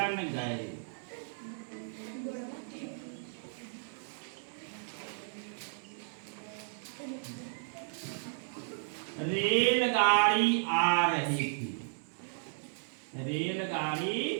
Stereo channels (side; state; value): left; silent; digital silence